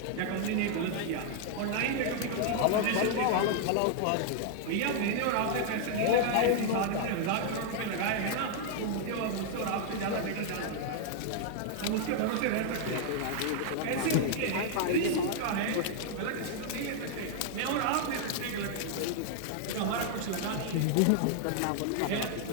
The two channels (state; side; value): different; both; correlation 0.00